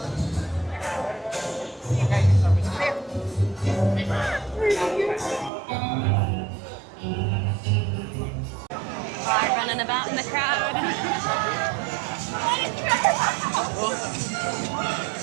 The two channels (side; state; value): left; drops out; at 5.5 s